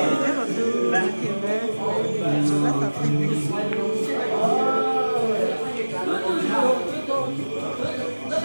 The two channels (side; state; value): both; inverted; correlation -1.00